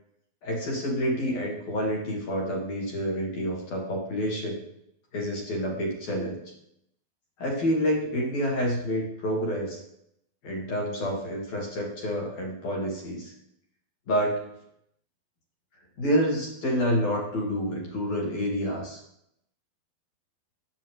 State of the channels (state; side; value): late; right; 12 ms